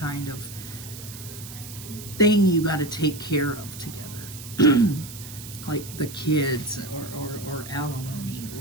of thing you got to take care of together. Like the kids or alimony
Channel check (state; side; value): noise; right; hiss, 13 dB below the sound